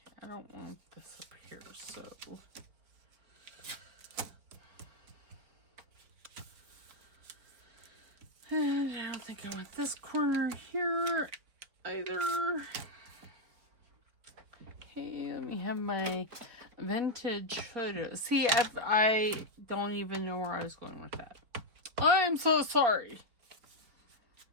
I don't want this up here, so. And I don't think I want this corner here either. Okay, let me have my vintage photos. See, I don't even know where I was going with that. I'm so sorry.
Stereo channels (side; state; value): left; late; 4.6 ms